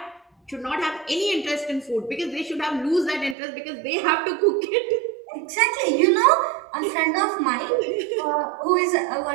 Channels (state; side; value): drops out; left; at 3.4 s